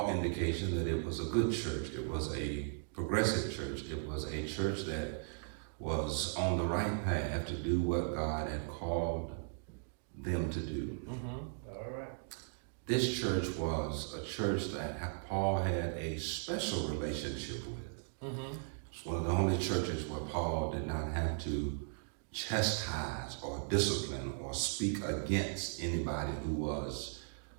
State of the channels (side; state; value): left; silent; digital silence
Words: indication that it was a good church. It was a progressive church. It was a church that was on the right path to do what God had called them to do. This church was a church that Paul had a special relationship with. It's one of the only churches where Paul did not have to chastise or discipline or speak against anybody who was